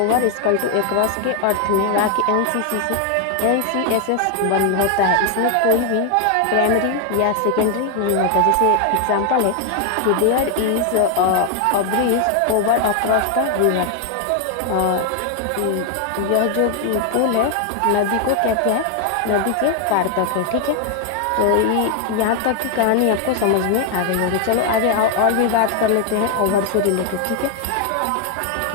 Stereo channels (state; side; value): different; both; correlation 0.00